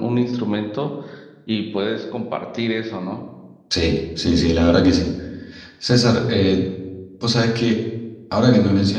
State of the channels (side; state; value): both; identical; correlation 1.00